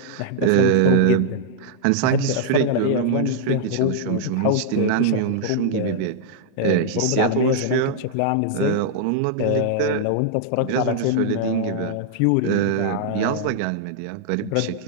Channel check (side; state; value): both; different; correlation -0.01